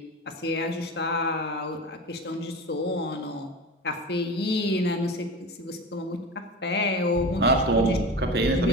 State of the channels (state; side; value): normal; both; correlation 0.30